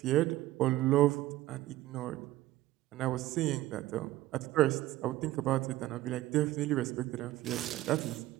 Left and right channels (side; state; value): left; quieter; 16.0 dB